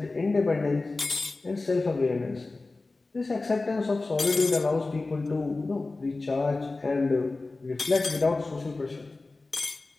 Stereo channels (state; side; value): quieter; right; 3.4 dB